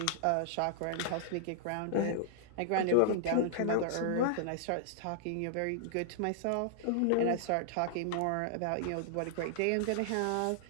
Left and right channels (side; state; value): both; different; correlation -0.01